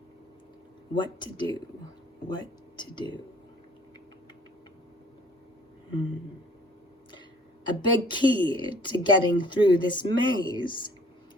What to do? A big key to getting through this maze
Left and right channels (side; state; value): both; normal; correlation 0.56